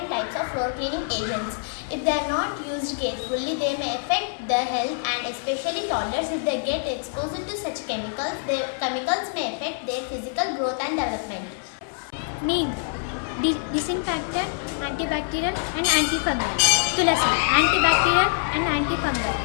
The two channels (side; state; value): right; silent; 62 dB below the other